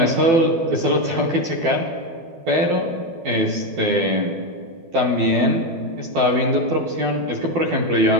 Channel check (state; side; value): late; left; 12 ms